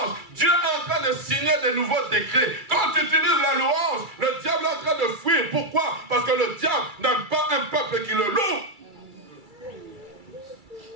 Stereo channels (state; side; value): late; left; 2.3 ms